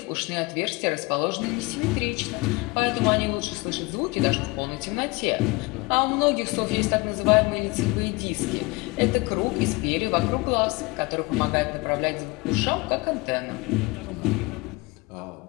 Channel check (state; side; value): quieter; right; 24.8 dB